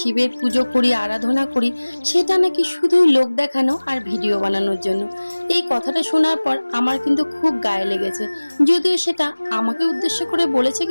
পুজো করি, আরাধনা করি, সেটা নাকি শুধুই লোক দেখানো আর ভিডিও বানানোর জন্য। এই কথাটা শোনার পর আমার কিন্তু খুব গায়ে লেগেছে। যদিও সেটা আমাকে উদ্দেশ্য করে বলেছে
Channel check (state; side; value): inverted; both; correlation -1.00